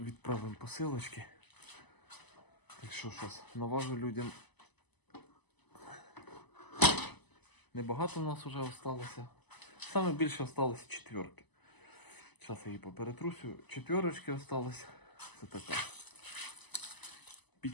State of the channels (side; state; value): right; late; 0.99 ms